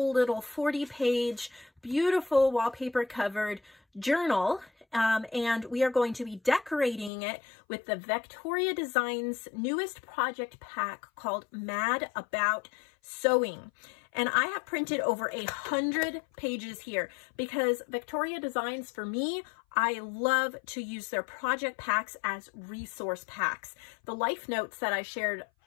little 40-page, beautiful wallpaper covered journal. And we are going to be decorating it with the Vectoria Designs newest project pack called Mad About Sewing. And I have printed over 100 pages here because Vectoria Designs, for me, I love to use their project packs as resource packs. The life notes that I shared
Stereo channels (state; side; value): drops out; right; at 7.1 s